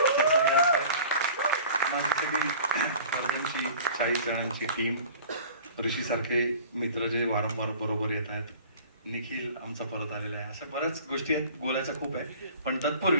माझी सगळी अर्जुनची 40 जणांची टीम, ऋषीसारखे मित्र जे वारंवार बरोबर येत आहेत, निखिल आमचा परत आलेला आहे. अशा बऱ्याच गोष्टी आहेत, बोलायच्या खूप आहे. पण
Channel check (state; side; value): inverted; both; correlation -0.44